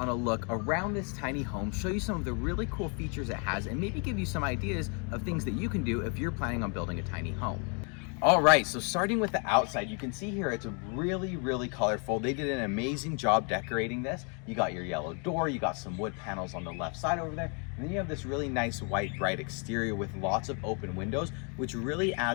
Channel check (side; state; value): right; quieter; 37.3 dB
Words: a look around this tiny home, show you some of the really cool features it has, and maybe give you some ideas of things that you can do if you're planning on building a tiny home. All right, so starting with the outside, you can see here it's really colorful. They did an amazing job decorating this. You got your yellow door, you got some wood panels on the left side over there, and then you have this really nice white bright exterior with lots of open windows, which really